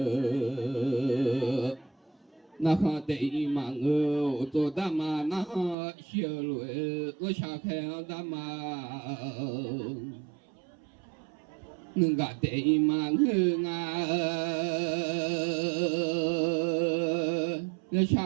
na ha dei ma ngơ to da ma na ha xia lue lo xa khe da ma nương ga dei ma ngơ nga lo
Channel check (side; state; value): left; drops out; at 5.8 s